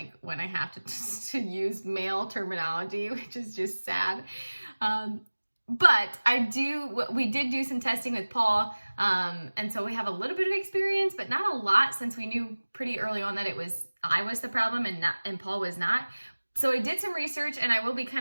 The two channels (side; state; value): both; inverted; correlation -1.00